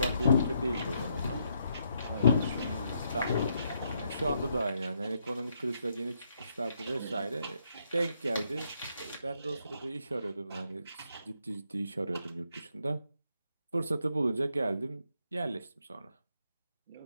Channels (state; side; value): inverted; both; correlation -0.76